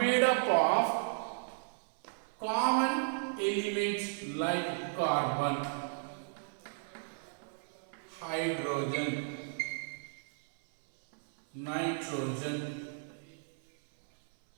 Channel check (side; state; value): left; silent; 55 dB below the other